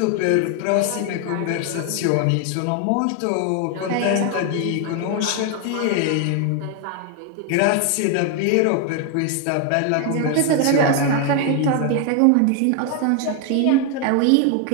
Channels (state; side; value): different; both; correlation 0.01